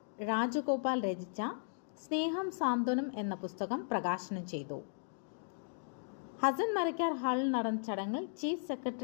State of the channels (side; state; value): right; silent; digital silence